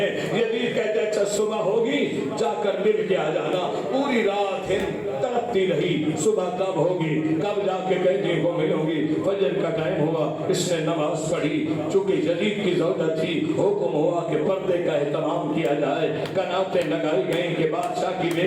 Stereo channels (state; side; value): identical; both; correlation 1.00